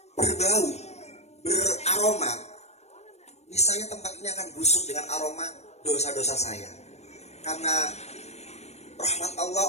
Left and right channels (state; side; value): late; right; 0.31 ms